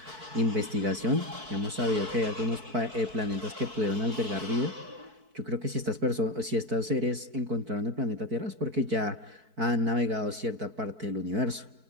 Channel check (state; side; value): late; left; 4.6 ms